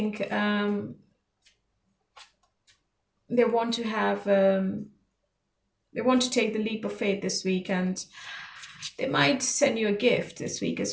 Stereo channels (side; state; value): both; identical; correlation 1.00